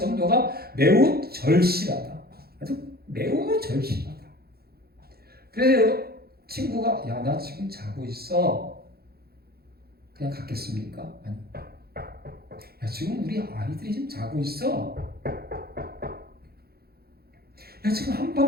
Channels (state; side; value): late; left; 0.45 ms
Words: 매우 절실하다. 아주 매우 절실하다. 그래서 친구가 나 지금 자고 있어. 그냥 갔겠습니까? 아니. 지금 우리 아이들이 지금 자고 있어. 지금